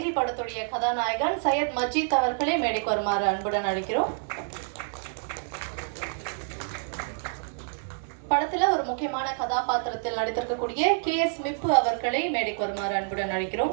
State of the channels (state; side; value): silent; left; digital silence